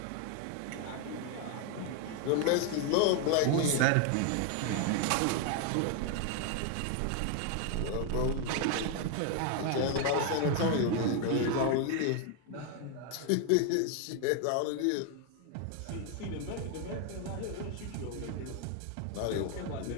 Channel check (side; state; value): both; different; correlation 0.01